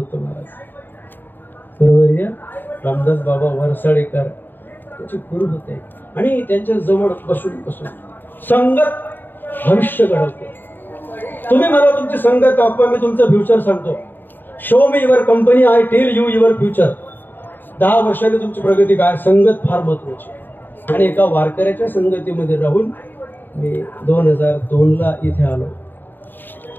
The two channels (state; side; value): late; right; 0.093 ms